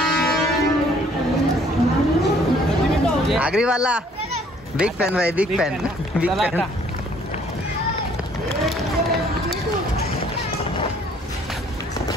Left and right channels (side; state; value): both; normal; correlation 0.60